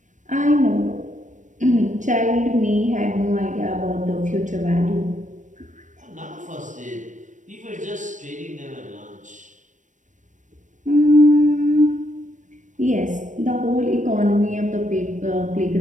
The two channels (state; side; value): late; left; 0.36 ms